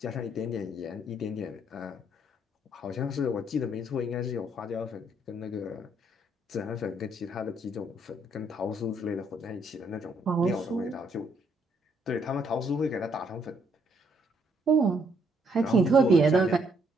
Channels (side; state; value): both; normal; correlation 0.70